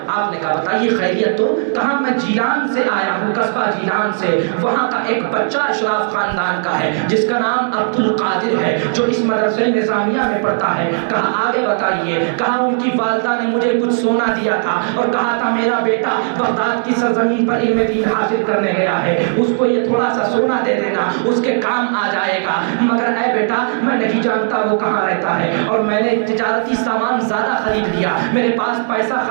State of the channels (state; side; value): silent; left; digital silence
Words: آپ نے کہا بتائیے خیریت تو؟ کہا میں جیلان سے آیا ہوں، قصبہ جیلان سے، وہاں کا ایک بچہ اشراف خاندان کا ہے جس کا نام عبد القادر ہے جو اس مدرسے نظامیہ میں پڑھتا ہے۔ کہا آگے بتائیے؟ کہا ان کی والدہ نے مجھے کچھ سونا دیا تھا اور کہا تھا میرا بیٹا بغداد کی سرزمین پر علم دین حاصل کرنے گیا ہے، اس کو یہ تھوڑا سا سونا دے دینا، اس کے کام آ جائے گا، مگر اے بیٹا میں نہیں جانتا وہ کہاں رہتا ہے، اور میں نے تجارتی سامان زیادہ خرید لیا، میرے پاس پیسہ